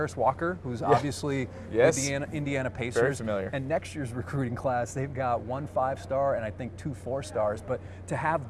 Walker, who's obviously with the Indiana Pacers. Very familiar. And next year's recruiting class, they've got 1 5-star and I think 2 4-stars. But to have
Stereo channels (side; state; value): both; identical; correlation 1.00